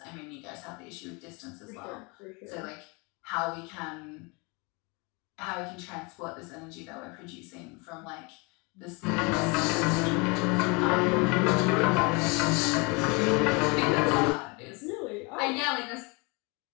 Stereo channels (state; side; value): quieter; right; 29.3 dB